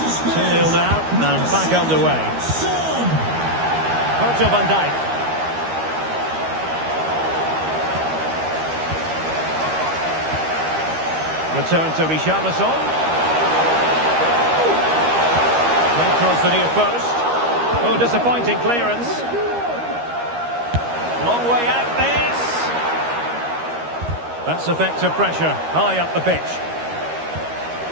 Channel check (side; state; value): left; late; 13 ms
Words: Spurs. 2-0 now, and back underway. Son. Virgil van Dijk. Return to Richarlison. Played across the near post. Oh, disappointing clearance. Long way out this. That's effective pressure high up the pitch.